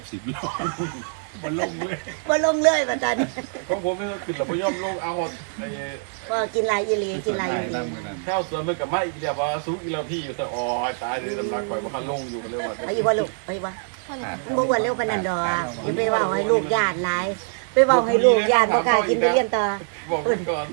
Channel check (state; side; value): silent; left; 63 dB below the other